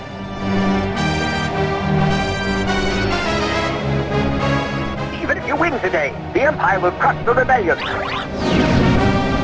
Even if you win today, the Empire will crush the rebellion.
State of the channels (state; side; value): identical; both; correlation 1.00